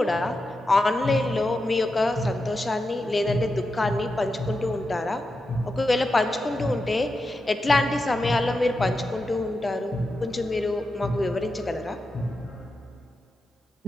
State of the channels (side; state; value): both; normal; correlation 0.89